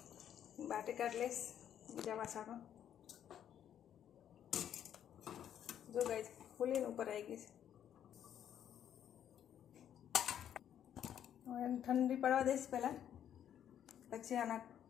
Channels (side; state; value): right; quieter; 9.9 dB